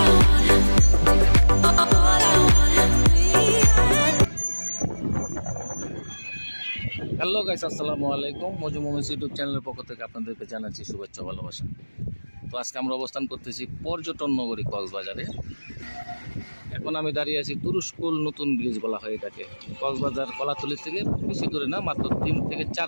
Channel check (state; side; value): inverted; both; correlation -1.00